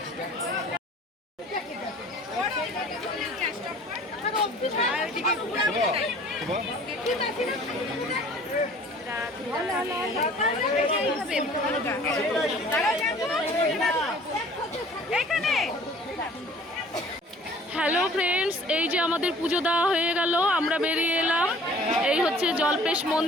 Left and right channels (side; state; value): both; normal; correlation 0.51